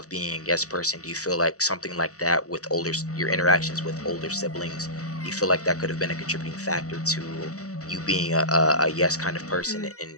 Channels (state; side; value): late; right; 0.66 ms